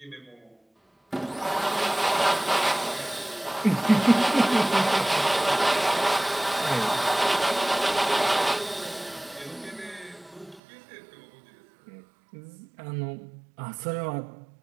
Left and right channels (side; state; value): left; drops out; at 10.6 s